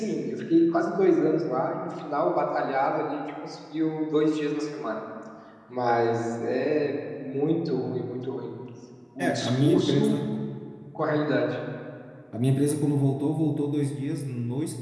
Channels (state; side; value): identical; both; correlation 1.00